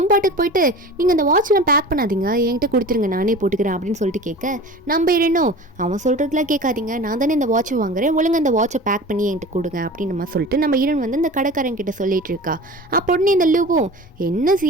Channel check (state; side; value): normal; both; correlation 0.37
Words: பாட்டுக்கு போயிட்டு நீங்கள் அந்த வாட்ச்லாம் பேக் பண்ணாதீங்க, என்கிட்ட கொடுத்துருங்க நானே போட்டுக்கிறேன் அப்படின்னு சொல்லிட்டு கேட்க நம்ம ஹீரோனோ அவன் சொல்கிறதுலாம் கேட்காதீங்க, நான் தானே இந்த வாட்சை வாங்குறேன், ஒழுங்கு அந்த வாட்சை பேக் பண்ணி என்கிட்ட கொடுங்க அப்படின்னு நம்ம சொல்லிட்டு நம்ம ஹீரோன் வந்து இந்த கடைக்காரன் கிட்ட சொல்லிட்டு இருக்கா. அப்போ உடனே இந்த லூவும் என்ன சி